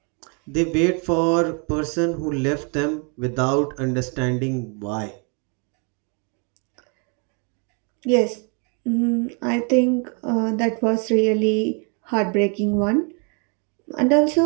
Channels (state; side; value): quieter; left; 36.6 dB